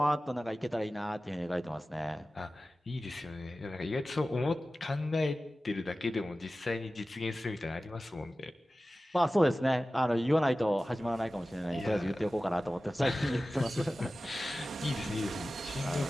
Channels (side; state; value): both; normal; correlation 0.96